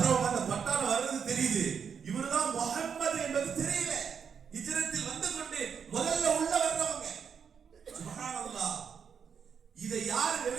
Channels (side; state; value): left; quieter; 7.0 dB